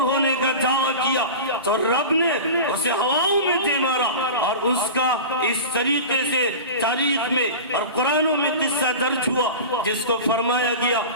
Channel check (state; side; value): inverted; both; correlation -0.31